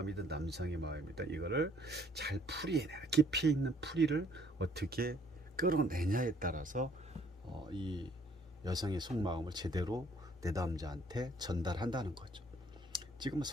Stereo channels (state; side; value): normal; both; correlation 0.62